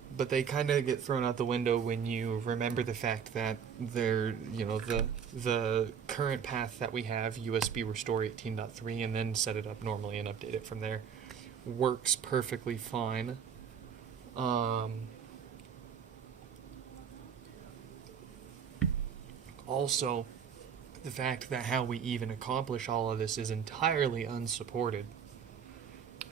they kind of get thrown out the window when you remember the fact that the current path that we have, USB restore 18.3, and then set it up normally and update it from there, works perfectly fine. Also, the fact that how we even accomplish all of this is entirely unsupported.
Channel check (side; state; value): left; quieter; 7.4 dB